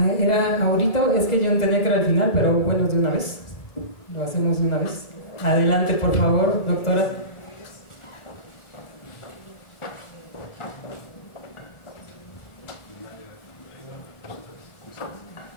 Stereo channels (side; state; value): right; late; 2.0 ms